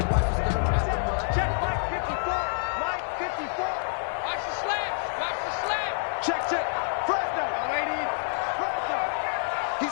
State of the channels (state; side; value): silent; right; digital silence